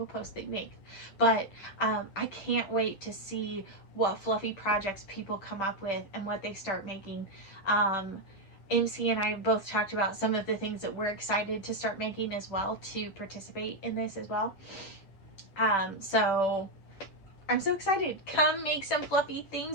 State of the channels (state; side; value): late; right; 10 ms